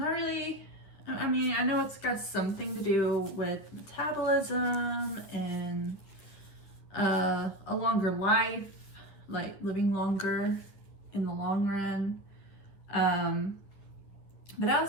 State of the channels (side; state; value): right; late; 10 ms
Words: really. I mean, I know it's got something to do with metabolism and a longer life, like living longer in the long run. But